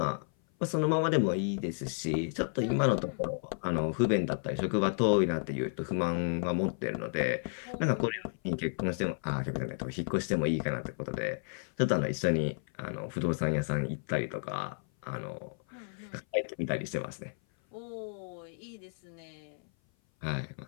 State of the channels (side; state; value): right; silent; 55 dB below the other